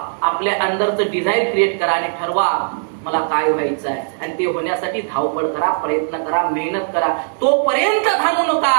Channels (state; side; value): silent; left; digital silence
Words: आपल्या अंदरचं डिझायर क्रिएट करा आणि ठरवा मला काय व्हायचं आहे. आणि ते होण्यासाठी धावपळ करा, प्रयत्न करा, मेहनत करा. तोपर्यंत थांबू नका